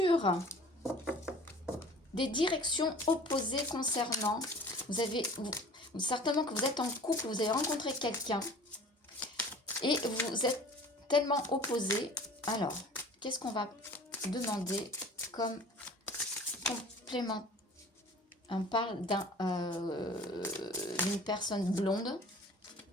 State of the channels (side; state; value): both; normal; correlation 0.45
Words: des directions opposées concernant... certainement que vous êtes en couple, vous avez rencontré quelqu'un et vous êtes tellement opposés. Alors, qu'est-ce qu'on va demander comme complément? On parle d'une personne blonde,